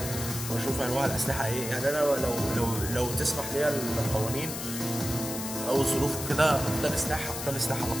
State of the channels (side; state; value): left; noise; hiss, 6 dB below the sound